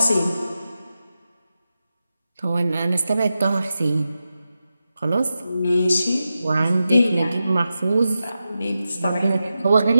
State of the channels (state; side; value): inverted; both; correlation -0.91